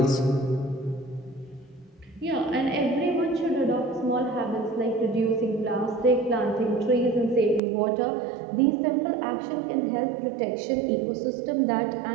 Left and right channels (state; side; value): drops out; left; at 7.6 s